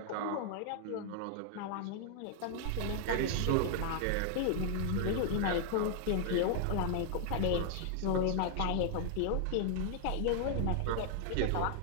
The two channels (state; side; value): different; both; correlation 0.00